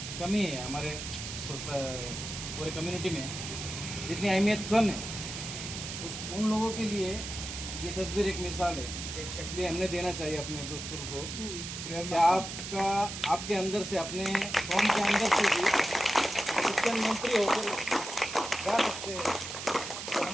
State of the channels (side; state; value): right; noise; hiss, 7 dB below the sound